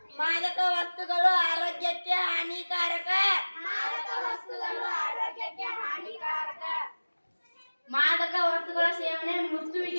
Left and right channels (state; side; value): inverted; both; correlation -1.00